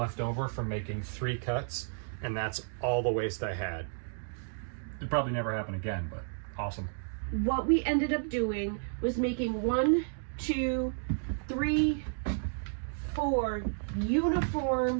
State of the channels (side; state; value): left; silent; digital silence